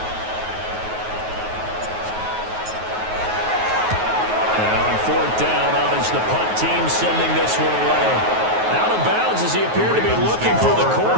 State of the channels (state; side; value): late; left; 9.4 ms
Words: Now on 4th down, out is the punt team sending this one away. Out of bounds as he appeared to be looking for the